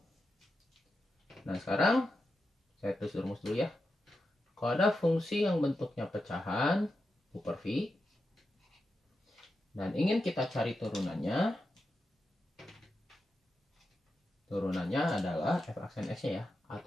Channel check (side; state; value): both; normal; correlation 0.89